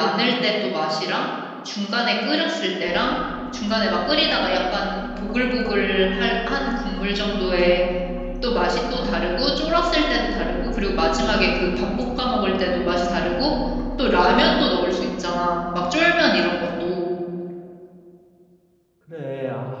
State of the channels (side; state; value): both; identical; correlation 1.00